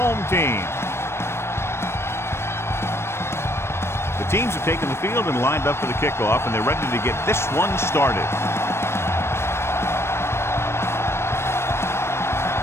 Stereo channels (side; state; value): right; late; 0.12 ms